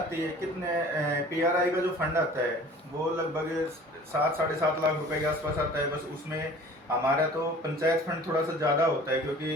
है। कितने PRI का जो फंड आता है वो लगभग 7-7.5 लाख रुपए के आसपास आता है। बस उसमें हमारा तो पंचायत फंड थोड़ा सा ज़्यादा होता है,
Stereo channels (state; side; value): normal; both; correlation 0.46